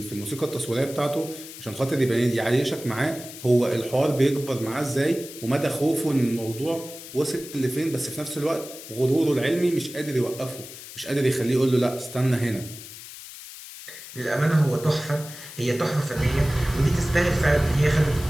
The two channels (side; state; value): left; noise; hiss, 14 dB below the sound